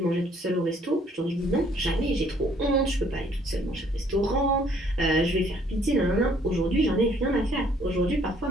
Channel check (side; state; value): both; normal; correlation 0.62